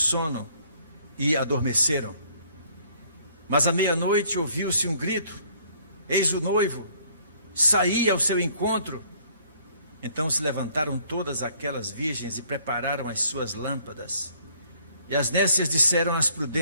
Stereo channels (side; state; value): both; inverted; correlation -0.61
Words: e adormeceram. Mas à meia-noite ouviu-se um grito: eis o noivo, saí ao seu encontro. Então se levantaram todas aquelas virgens e prepararam as suas lâmpadas. E as nécias disseram às